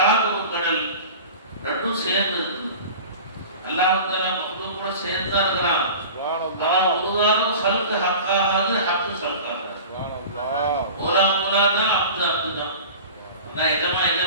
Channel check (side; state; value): both; inverted; correlation -0.37